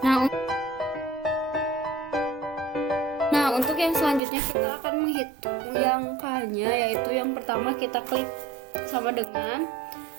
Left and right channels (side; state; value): left; drops out; at 4.2 s